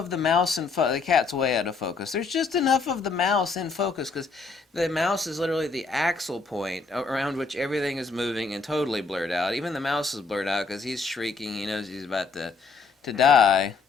the mouse in focus. The cat's way out of focus. There's just enough of the mouse in focus because the mouse is literally the axle point around which everything is moving and totally blurred out. Even the mouse is blurred out because he's shrieking. He knows he's about to die.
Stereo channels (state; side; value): quieter; right; 4.4 dB